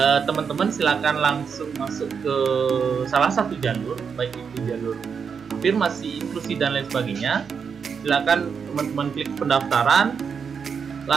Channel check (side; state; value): left; quieter; 6.3 dB